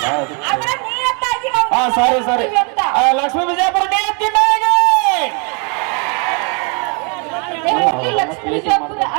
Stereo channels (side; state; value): left; quieter; 35.8 dB